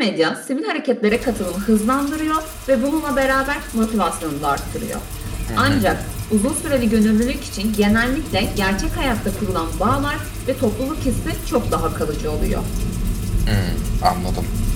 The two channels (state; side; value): identical; both; correlation 1.00